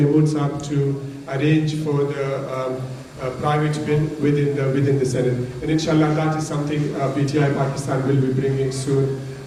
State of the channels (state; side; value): identical; both; correlation 1.00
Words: Saab to arrange for the private bill within the Senate. And inshallah that is something PTI Pakistan will be bringing soon